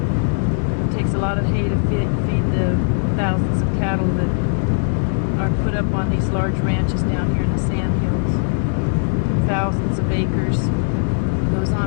It takes a lot of hay to feed the thousands of cattle that are put up on these large ranches down here in the sand hills. Thousands of acres. Goes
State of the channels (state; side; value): silent; right; digital silence